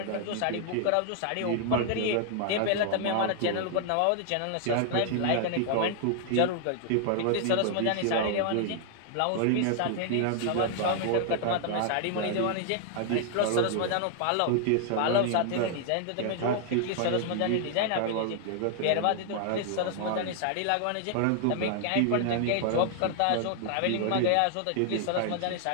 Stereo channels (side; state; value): both; different; correlation 0.00